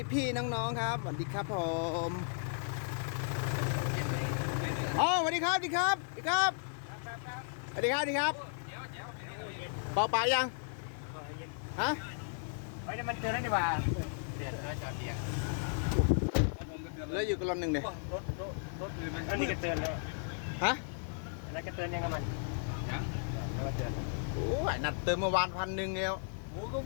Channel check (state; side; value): silent; right; digital silence